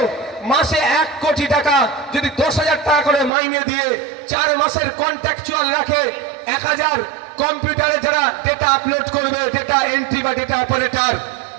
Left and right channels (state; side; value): drops out; left; at 3.3 s